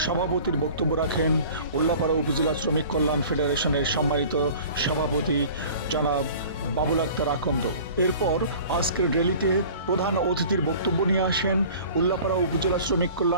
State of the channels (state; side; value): inverted; both; correlation -0.45